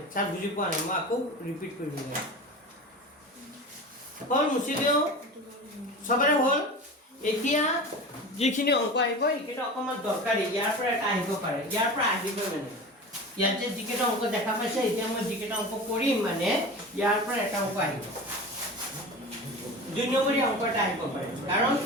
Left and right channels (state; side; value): normal; both; correlation 0.32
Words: স্যার বুজি পোৱা নাই মই আকৌ ৰিপিট কৰিব লাগে হল মুছি দিও সবৰে হল এতিয়া যিখিনি অংক আহিব এইকেইটা অকমান দৰকাৰী ইয়াৰ পৰা এটা আহিব পাৰে ইয়াৰ পৰা আহিব মানে ইয়াত যে যিকেইটা অংক দেখা পাইছে এতিয়া মই যিকেইটা অংক কৰিম মানে ইয়াৰ পৰা এটা অংক আহিব 2 নম্বৰী অংক এটা আহিব পাৰে কাৰণ